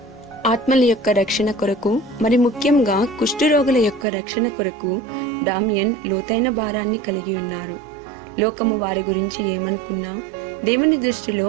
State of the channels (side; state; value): left; drops out; at 4.0 s